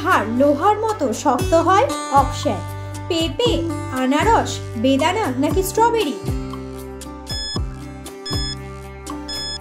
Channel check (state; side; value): identical; both; correlation 1.00